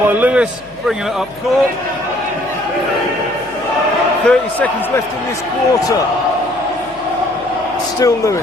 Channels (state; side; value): noise; left; hum, 25 dB below the sound